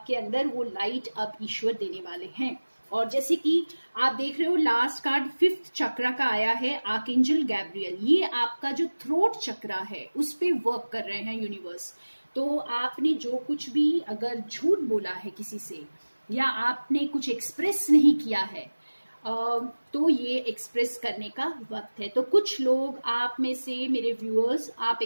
अंदर वो लाइट अब ईश्वर देने वाले हैं। और जैसे कि आप देख रहे हो, लास्ट कार्ड 5th चक्र का आया है, आर्कएंजल गैब्रियल। ये आपका जो थ्रोट चक्र है उस पे वर्क कर रहे हैं यूनिवर्स। तो आपने जो कुछ भी अगर झूठ बोला है किसी से, या आपने कुछ एक्सप्रेस नहीं किया है, तो ये एक्सप्रेस करने का वक्त है। तो कुछ लोग आप में से, मेरे व्यूअर्स, आप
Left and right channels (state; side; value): inverted; both; correlation -1.00